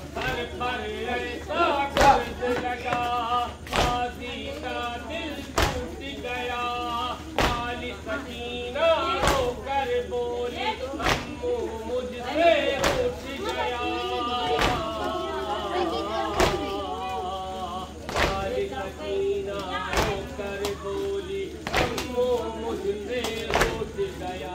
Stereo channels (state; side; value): identical; both; correlation 1.00